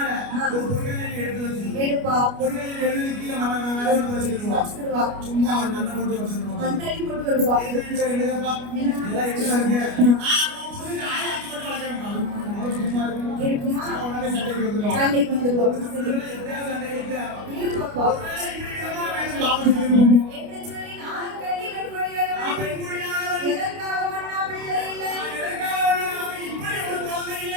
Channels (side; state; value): left; late; 29 ms